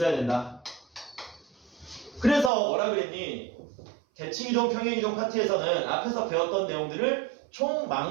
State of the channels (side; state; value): left; drops out; at 2.5 s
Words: 된다. 그래서 뭐라 그랬니? 대칭이동, 평행이동 파트에서는 앞에서 배웠던 내용들을